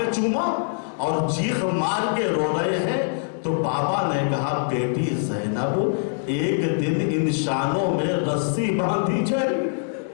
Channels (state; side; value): silent; right; digital silence